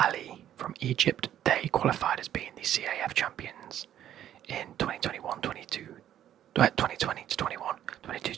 from Egypt, they qualified as being the CAF champions in 2021, 2020 to 21, 22,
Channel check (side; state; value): left; quieter; 11.2 dB